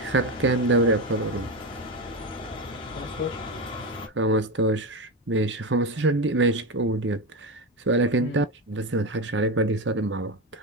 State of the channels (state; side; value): normal; both; correlation 0.16